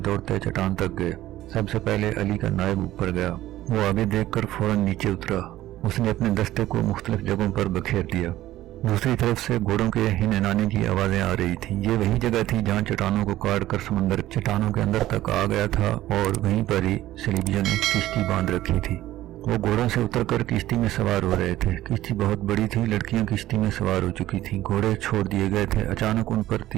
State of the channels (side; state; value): left; quieter; 14.8 dB